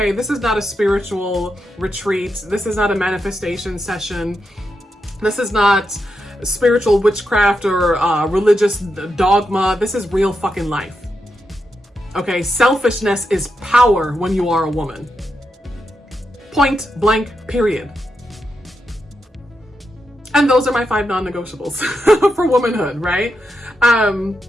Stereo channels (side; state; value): both; normal; correlation 0.85